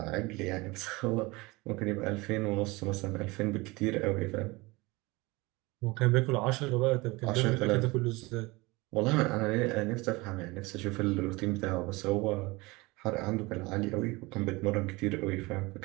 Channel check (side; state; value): left; quieter; 23.4 dB